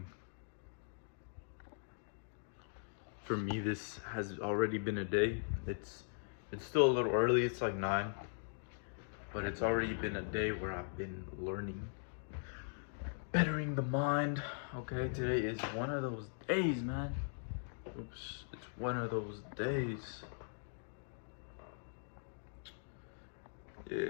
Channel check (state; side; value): silent; right; digital silence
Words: For me, this has already been a day. It's still a little early, it's like 9, but it's already been a day where I've been learning, bettering the mind. Okay, today is one of those days, man. Oops, it's one of those days.